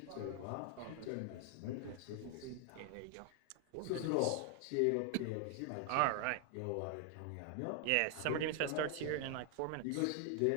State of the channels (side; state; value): both; different; correlation 0.00